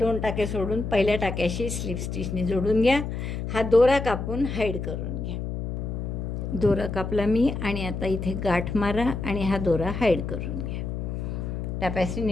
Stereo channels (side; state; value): left; noise; hum, 4 dB below the sound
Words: टाके सोडून पहिल्या टाक्याशी स्लिप स्टिचने जोडून घ्या. हा दोरा कापून हाईड करून घ्या. दोरा कापला मी आणि आता इथे गाठ मारा आणि हा दोरा हाईड करून घ्या. टॅपॅसी